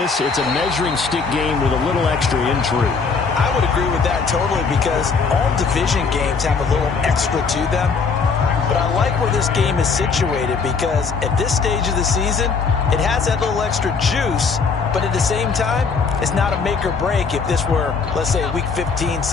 it's a measuring stick game with a little extra intrigue. I would agree with that totally because all division games have a little extra to them. But I like where this game is situated because at this stage of the season, it has that little extra juice. But at the same time, it's not a make or break if this were, let's say, week 15,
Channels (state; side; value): quieter; right; 5.1 dB